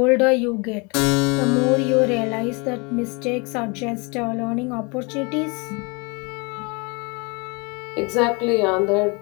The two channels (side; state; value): right; quieter; 30.3 dB